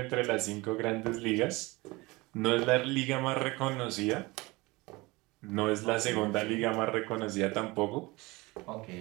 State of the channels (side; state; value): left; quieter; 23.0 dB